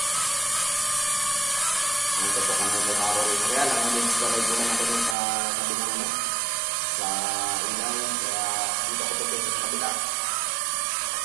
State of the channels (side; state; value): left; drops out; at 5.2 s